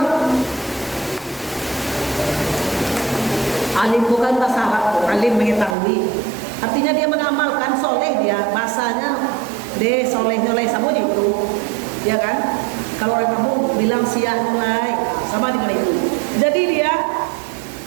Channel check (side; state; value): left; drops out; at 5.8 s